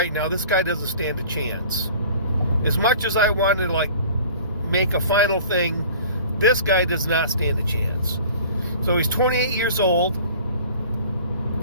now, this guy doesn't stand a chance. As much as I wanted to make a final thing, this guy does not stand a chance. So he's 28 years old.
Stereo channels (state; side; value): inverted; both; correlation -0.46